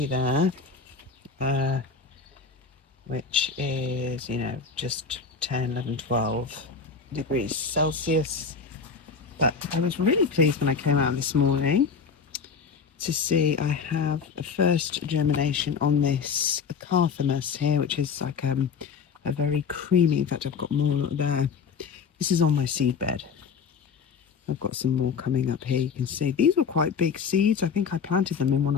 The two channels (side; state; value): right; quieter; 5.7 dB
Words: there, which is, just 10, 11, 12 degrees Celsius. But I was really pleased when I came out this morning to see I have a first germination on this Carthamus here, which is like a very creamy, in fact I've got more there. This is on my seed bed. I've got some more coming up here. You can see these were quite big seeds. I think I planted them in one